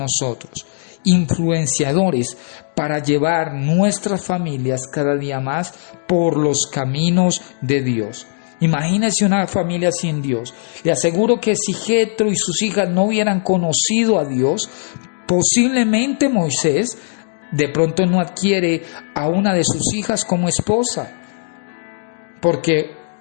influenciadores para llevar nuestras familias cada día más por los caminos de Dios. Imagínese una familia sin Dios. Le aseguro que si Jethro y sus hijas no hubieran conocido a Dios, posiblemente Moisés de pronto no adquiere a una de sus hijas como esposa, porque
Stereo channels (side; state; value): right; silent; digital silence